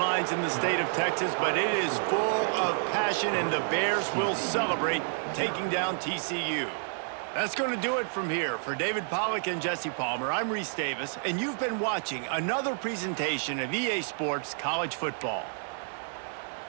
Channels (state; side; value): silent; left; digital silence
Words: in the state of Texas, but it is full of passion, and the Bears will celebrate taking down TCU. That's going to do it from here. For David Pollack and Jesse Palmer, I'm Reese Davis, and you've been watching another presentation of EA Sports College Football.